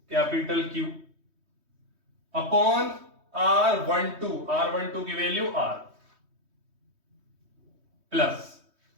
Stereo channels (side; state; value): left; late; 3.2 ms